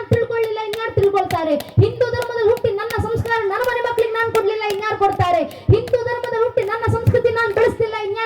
ತಿಳ್ಕೊಳ್ಳಿಲ್ಲ, ಇನ್ಯಾರು ತಿಳ್ಕೊಳ್ತಾರೆ? ಹಿಂದೂ ಧರ್ಮದಲ್ಲಿ ಹುಟ್ಟಿ ನನ್ನ ಸಂಸ್ಕಾರ ನನ್ನ ಮನೆ ಮಕ್ಕಳಿಗೆ ನಾನು ಕೊಡ್ಲಿಲ್ಲ, ಇನ್ಯಾರು ಕೊಡ್ತಾರೆ? ಹಿಂದೂ ಧರ್ಮದಲ್ಲಿ ಹುಟ್ಟಿ ನನ್ನ ಸಂಸ್ಕೃತಿ ನಾನು ಬೆಳೆಸ್ತಿಲ್ಲ,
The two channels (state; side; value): identical; both; correlation 1.00